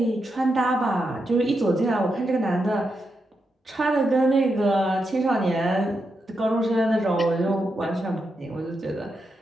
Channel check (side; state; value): both; normal; correlation 0.85